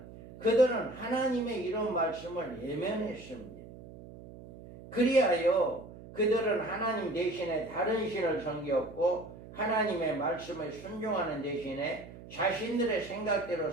그들은 하나님의 이런 말씀을 외면했습니다. 그리하여 그들은 하나님 대신에 다른 신을 섬겼고 하나님의 말씀에 순종하는 대신에 자신들의 생각대로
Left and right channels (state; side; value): noise; right; hum, 16 dB below the sound